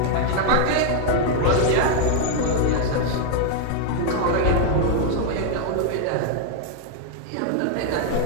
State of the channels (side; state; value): both; different; correlation 0.00